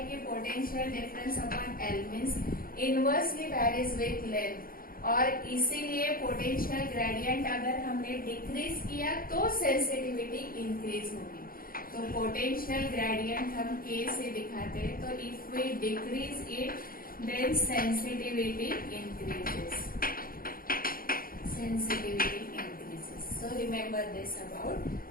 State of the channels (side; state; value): right; late; 0.42 ms